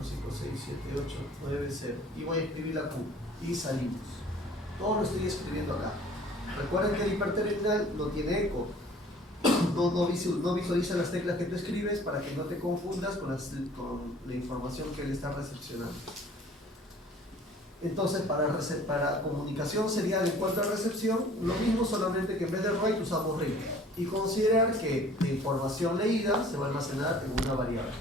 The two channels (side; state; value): both; normal; correlation 0.51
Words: 5, 6, 7, 8, 9, 0. Y voy a escribir la Q. Y salimos. Todo lo estoy escribiendo acá. Recuerden que el hiperterminal no tiene eco. No visualiza las teclas que tú escribes para que no te confundas con la información que él está recepcionando. Entonces, para comunicación serial en cuanto a recepción, lo mismo, solamente que en vez de write usamos read. Y considerar que la información leída se va a almacenar en una variable.